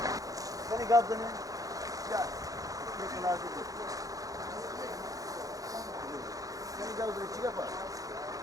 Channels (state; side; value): late; left; 0.17 ms